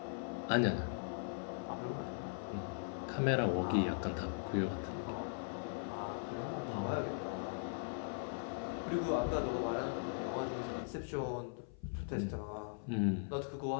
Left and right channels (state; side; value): silent; right; 51 dB below the other